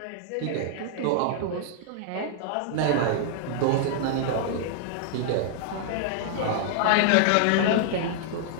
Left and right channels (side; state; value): both; different; correlation -0.01